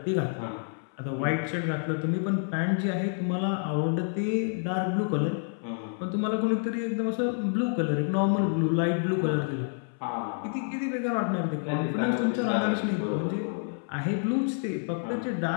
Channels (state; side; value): silent; right; 59 dB below the other